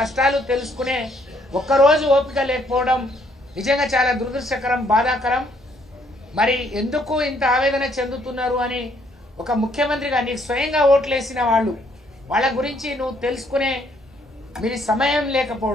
తెలుసుకునే ఒక్కరోజు ఓపిక లేకపోవడం నిజంగా చాలా దురదృష్టకరం, బాధాకరం. మరి ఎందుకు ఇంత ఆవేదన చెందుతున్నారు అని ఒక ముఖ్యమంత్రిగా నీకు స్వయంగా ఓట్లేసిన వాళ్ళు, వాళ్ళ గురించి నువ్వు తెలుసుకునే మీరు సమయం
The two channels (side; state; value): both; normal; correlation 0.68